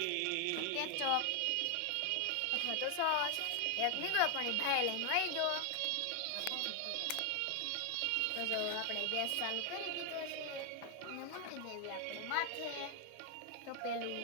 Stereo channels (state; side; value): different; both; correlation 0.00